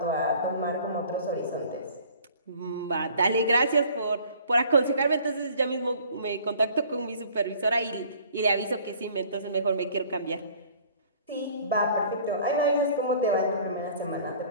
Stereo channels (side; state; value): both; inverted; correlation -0.52